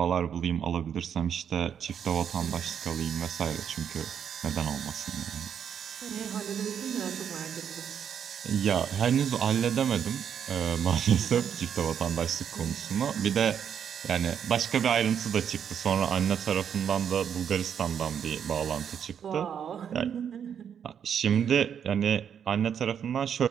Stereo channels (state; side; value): quieter; left; 8.2 dB